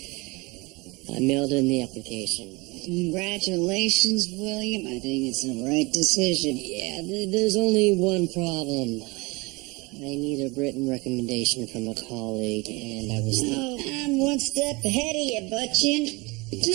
I mailed in the application. Congratulations, William. I think it's the right decision. Yeah, there's only one problem. I need a written recommendation from a colleague, and I was... Oh, I'm one step ahead of you, Butchin. You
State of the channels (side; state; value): left; quieter; 25.3 dB